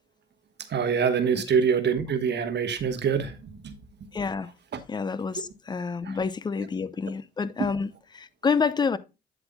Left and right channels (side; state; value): both; normal; correlation 0.40